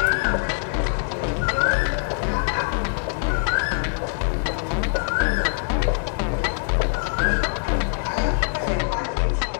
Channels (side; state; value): right; silent; digital silence